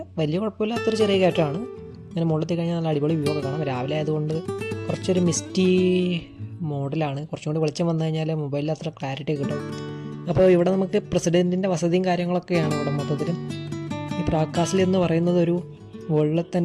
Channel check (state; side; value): identical; both; correlation 1.00